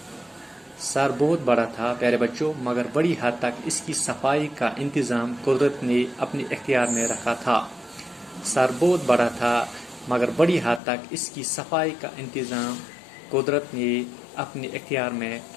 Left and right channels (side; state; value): right; drops out; at 10.8 s